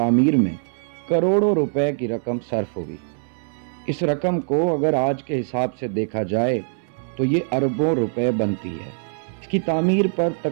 میں کروڑوں روپے کی رقم صرف ہوئی۔ اس رقم کو اگر آج کے حساب سے دیکھا جائے تو یہ اربوں روپے بنتی ہے۔ اس کی تعمیر پر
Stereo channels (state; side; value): silent; left; digital silence